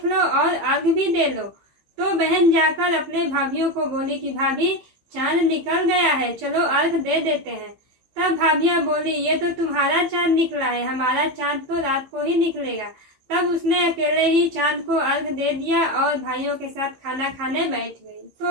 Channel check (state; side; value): late; left; 15 ms